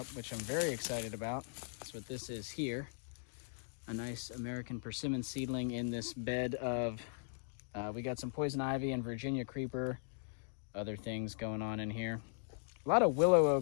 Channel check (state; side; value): silent; right; digital silence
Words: which I'm very excited about. That's what this is here. A nice American persimmon seedling in this bed of we got some poison ivy and Virginia creeper, other things going on in here. A lot of willow